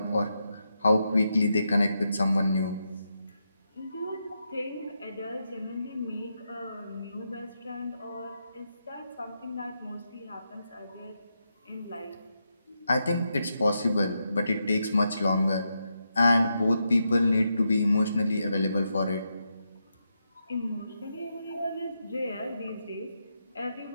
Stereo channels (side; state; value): both; inverted; correlation -0.84